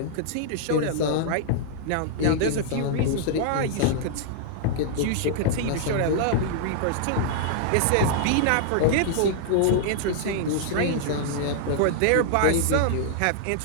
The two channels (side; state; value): both; different; correlation -0.01